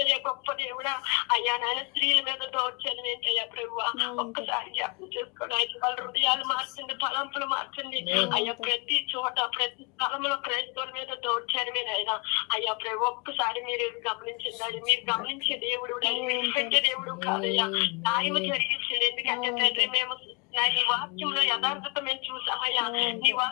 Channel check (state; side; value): quieter; right; 31.3 dB